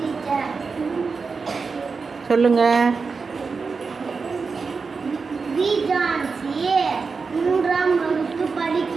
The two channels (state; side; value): quieter; left; 4.8 dB